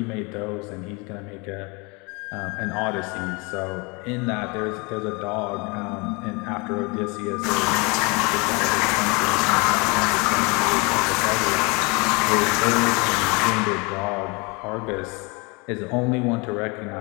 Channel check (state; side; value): quieter; right; 28.9 dB